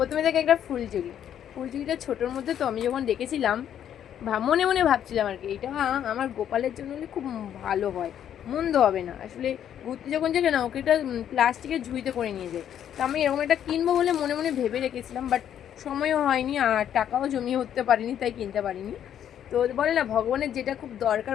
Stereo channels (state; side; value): quieter; right; 9.8 dB